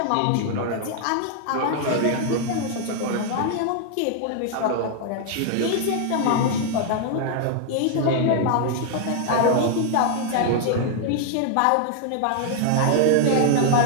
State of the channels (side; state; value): both; different; correlation 0.00